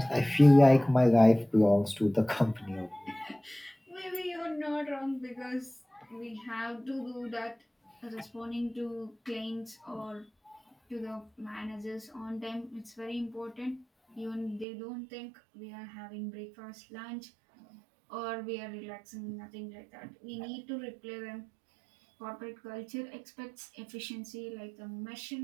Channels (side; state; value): left; drops out; at 14.7 s